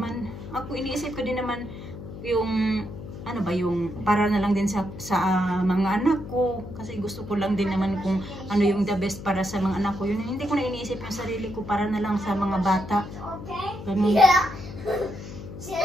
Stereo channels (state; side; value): noise; left; hum, 11 dB below the sound